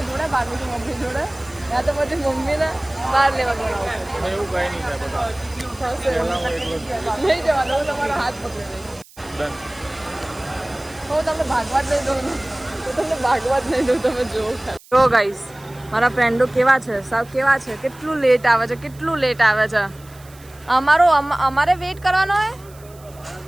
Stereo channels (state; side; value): noise; right; hiss, 24 dB below the sound